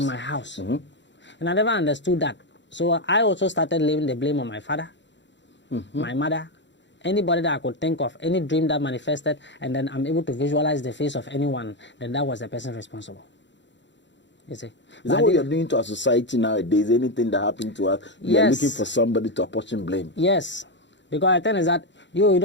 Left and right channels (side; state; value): right; late; 0.53 ms